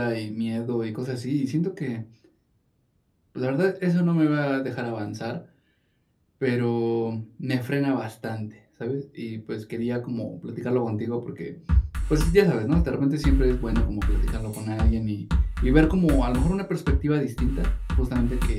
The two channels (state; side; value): identical; both; correlation 1.00